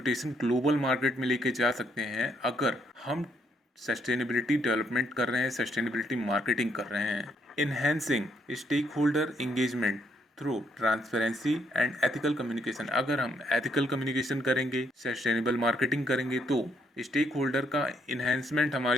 ग्लोबल मार्केट में लेके जा सकते हैं अगर हम सस्टेनेबिलिटी डेवलपमेंट कर रहे हैं, सस्टेनेबिलिटी मार्केटिंग कर रहे हैं। Enhancing stakeholder engagement through transparency and ethical communication. अगर हम एथिकल कम्युनिकेशन करेंगे, सस्टेनेबल मार्केटिंग करेंगे, तो स्टेक होल्डर का इन्हेंसमेंट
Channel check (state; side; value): normal; both; correlation 0.72